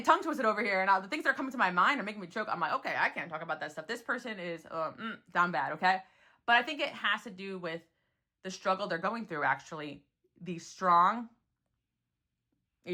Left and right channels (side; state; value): both; identical; correlation 1.00